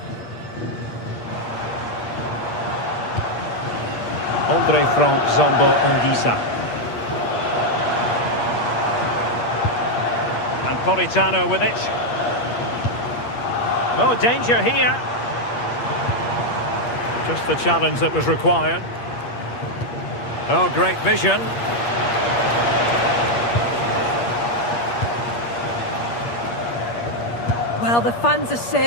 Andre Frank Zombo Ongisa. And Politano with it. Oh, danger here. Just the challenge that was required. Oh, great vision. Well, the fans are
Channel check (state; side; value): late; right; 8.5 ms